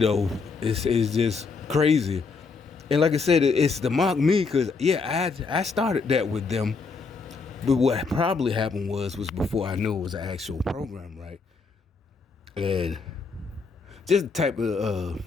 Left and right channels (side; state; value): right; quieter; 4.6 dB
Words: just crazy. And like I said, it's to mock me because, I started that with them. But what probably happened was before I knew it was an actual program, right? And just the type of